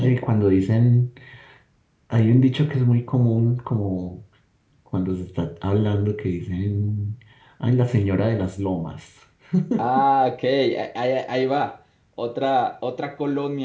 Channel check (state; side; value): identical; both; correlation 1.00